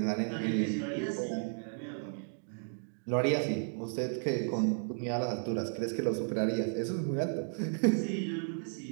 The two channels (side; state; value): left; silent; digital silence